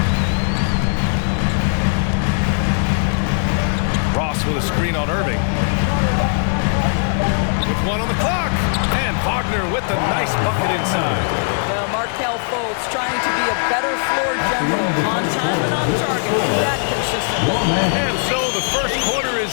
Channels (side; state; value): right; silent; 63 dB below the other